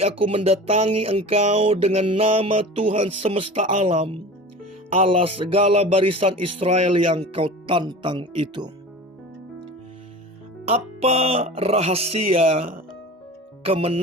aku mendatangi engkau dengan nama Tuhan semesta alam, Allah segala barisan Israel yang kau tantang itu." Apa rahasia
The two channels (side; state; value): both; normal; correlation 0.36